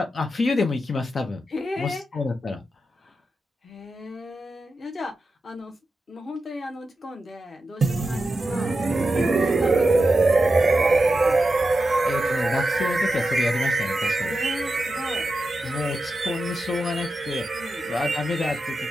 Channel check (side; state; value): both; normal; correlation 0.90